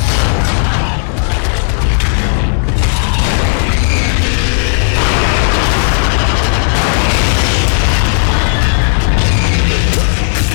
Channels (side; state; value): right; silent; digital silence